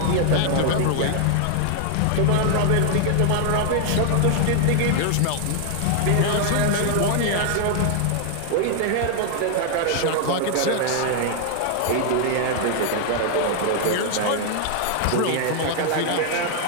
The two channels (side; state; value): both; different; correlation 0.00